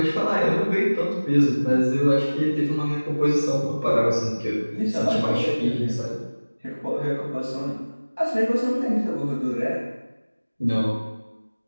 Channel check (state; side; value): inverted; both; correlation -1.00